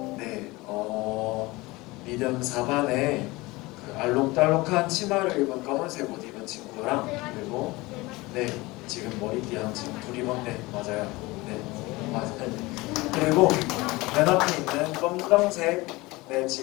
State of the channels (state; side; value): quieter; right; 21.8 dB